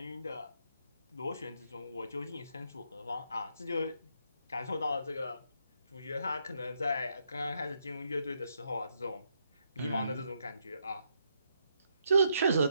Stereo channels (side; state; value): both; inverted; correlation -0.77